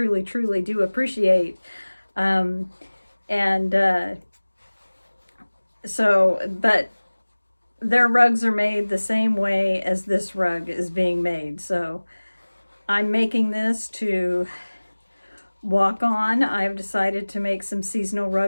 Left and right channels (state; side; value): inverted; both; correlation -1.00